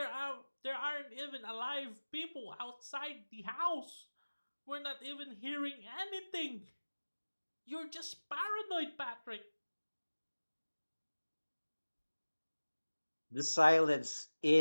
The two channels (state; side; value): inverted; both; correlation -1.00